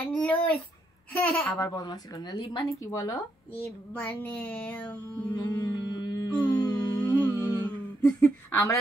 লুজ আবার বদমাশি করো না লিপ মানে কি বলো লিপ মানে আমরা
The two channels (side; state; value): both; normal; correlation 0.78